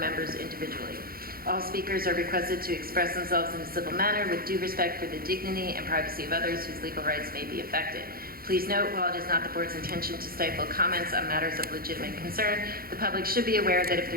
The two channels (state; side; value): late; left; 0.43 ms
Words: individually. All speakers are requested to express themselves in a civil manner with due respect for the dignity and privacy of others whose legal rights may be affected. Please note, while it is not the board's intention to stifle comments on matters of legitimate concern, the public should be aware that if